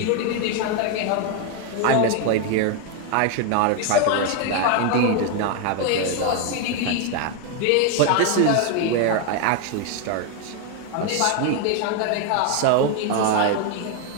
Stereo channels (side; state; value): both; different; correlation 0.01